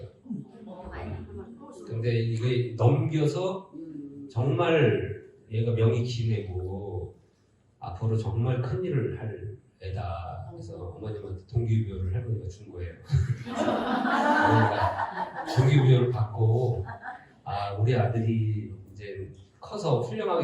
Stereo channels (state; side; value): identical; both; correlation 1.00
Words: 근데 이게 넘겨서 정말 얘가 명이 기내고 앞으로 정말 큰 일을 할 애다. 그래서 어머님한테 동기부여를 할머니가 준 거예요. 어머니가 동기부여를 받고 우리 아들이 이제 커서